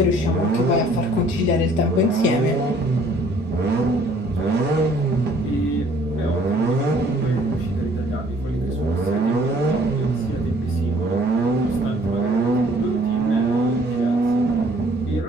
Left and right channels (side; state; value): both; normal; correlation 0.58